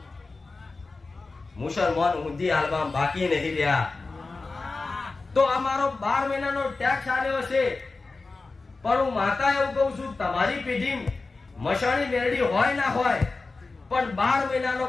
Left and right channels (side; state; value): right; quieter; 3.8 dB